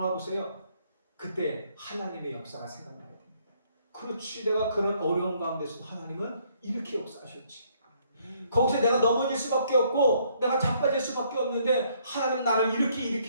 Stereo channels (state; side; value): inverted; both; correlation -0.67